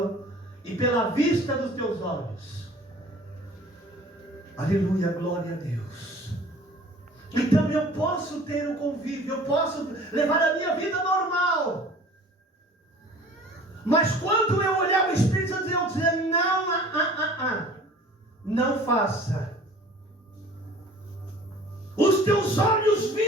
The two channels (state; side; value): normal; both; correlation 0.47